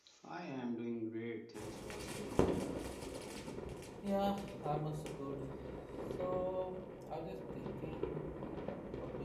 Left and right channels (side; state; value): both; identical; correlation 1.00